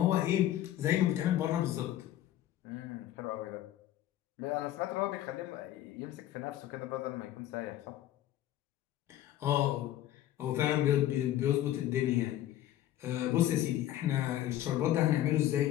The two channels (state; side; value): quieter; right; 13.0 dB